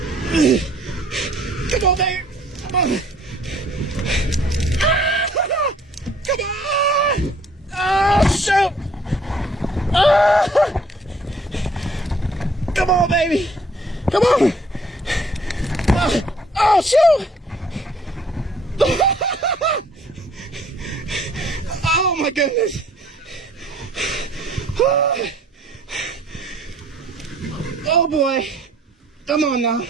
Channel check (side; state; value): both; normal; correlation 0.59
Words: Come on, baby. Come on. Come on. Oh, shoot. Come on, baby. Come on. Oh, shoot. Oh, my goodness. Oh, boy. Come on now.